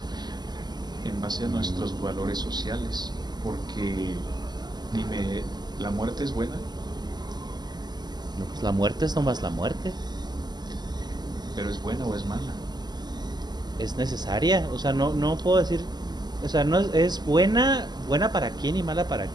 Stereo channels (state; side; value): late; left; 0.20 ms